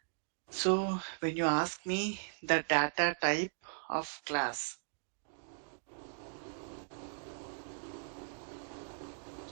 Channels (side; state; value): left; silent; digital silence